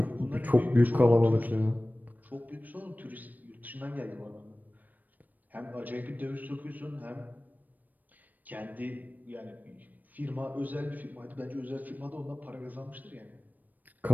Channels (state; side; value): late; left; 0.085 ms